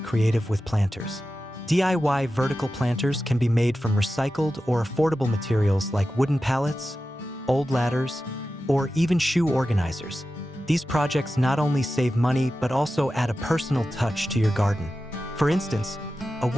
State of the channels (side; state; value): both; normal; correlation 0.93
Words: creative with planters. DIY vertical planters can be made from recycled or affordable materials like wooden pallets, old ladders, or even shoe organizers. These projects not only save money but also add a personal touch to your garden. For instance, a